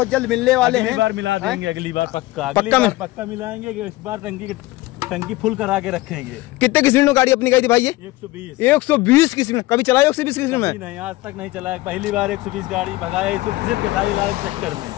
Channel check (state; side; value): quieter; right; 19.1 dB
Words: जल्द मिलने वाले हैं। अगली बार मिला देंगे, अगली बार पक्का, पक्का मिलाएंगे। इस बार टंकी फुल करा के रखेंगे। कितने की स्पीड में गाड़ी अपनी गई थी भाई? ये 120 की स्पीड में। कभी चलाया 120 की स्पीड में? नहीं, आज तक नहीं चलाया, पहली बार 120 गाड़ी भगाया सिर्फ खेसारी लाल के चक्कर में।